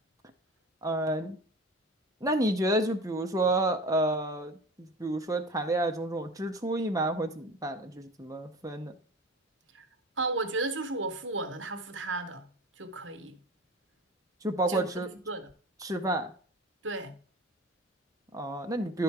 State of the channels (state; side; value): normal; both; correlation 0.35